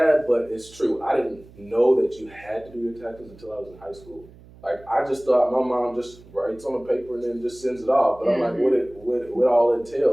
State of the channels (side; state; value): right; noise; hum, 23 dB below the sound